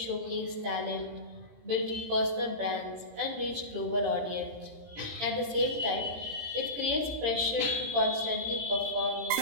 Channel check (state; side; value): late; left; 18 ms